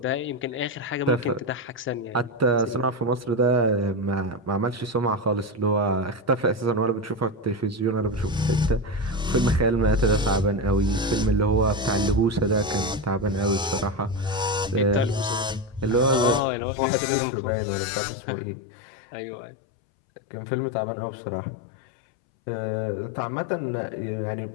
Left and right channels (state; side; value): drops out; right; at 16.4 s